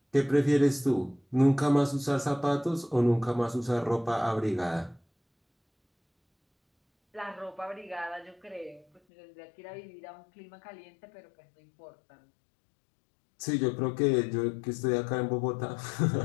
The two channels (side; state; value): right; drops out; at 9.0 s